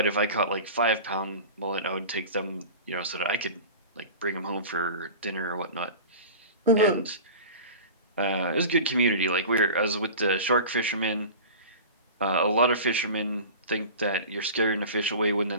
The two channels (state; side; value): inverted; both; correlation -0.35